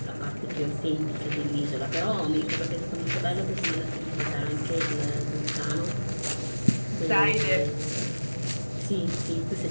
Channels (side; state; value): both; inverted; correlation -1.00